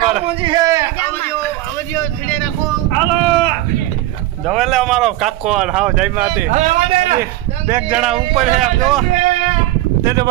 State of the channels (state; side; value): quieter; left; 15.6 dB